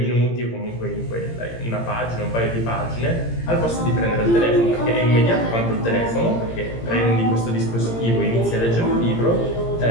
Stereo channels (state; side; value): late; right; 17 ms